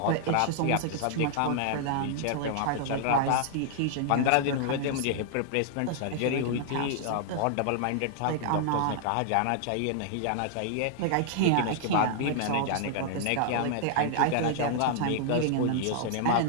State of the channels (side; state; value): both; different; correlation -0.01